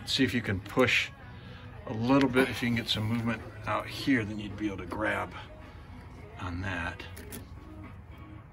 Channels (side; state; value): both; identical; correlation 1.00